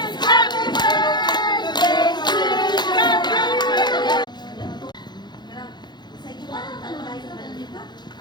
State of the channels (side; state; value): right; late; 0.21 ms